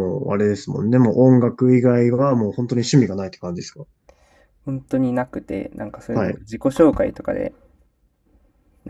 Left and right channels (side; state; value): both; identical; correlation 1.00